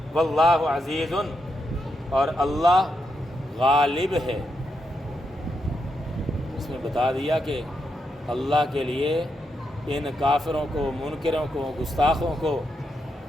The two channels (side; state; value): both; normal; correlation 0.83